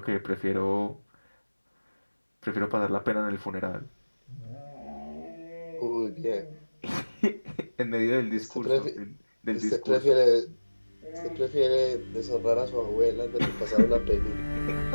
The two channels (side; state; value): both; inverted; correlation -1.00